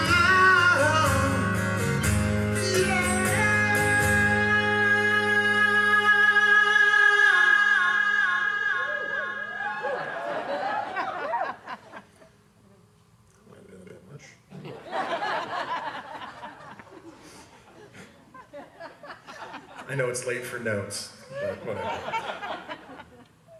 might be a bit much. I know it's late for notes, but whatever.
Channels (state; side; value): identical; both; correlation 1.00